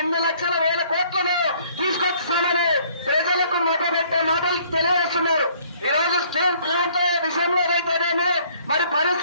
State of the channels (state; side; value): inverted; both; correlation -0.60